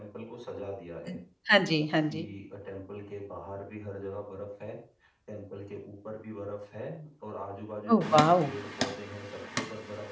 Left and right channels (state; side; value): identical; both; correlation 1.00